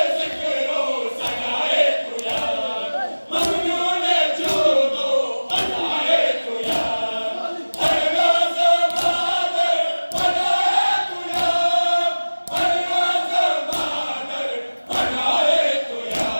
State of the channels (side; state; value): both; inverted; correlation -1.00